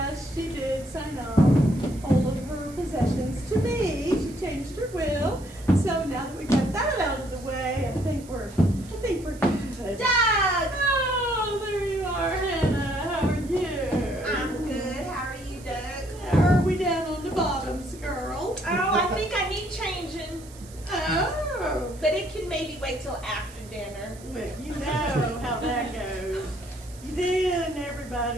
she did sign off all of her possessions to me. She changed her will. So now that we got that out of the way, I think we're good. Doug! Oh, there you are, Hannah. How are you? I'm good. How are you, Doug? Are we down on the bottoms, girl? Oh, I think I need changing. Oh. But it can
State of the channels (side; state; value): right; noise; hiss, 21 dB below the sound